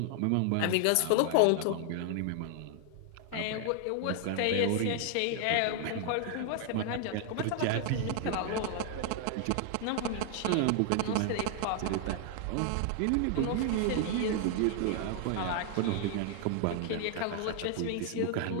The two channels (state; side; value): different; both; correlation 0.00